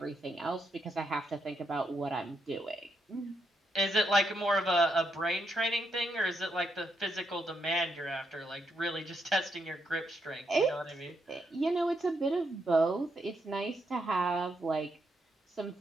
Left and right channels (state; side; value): normal; both; correlation 0.79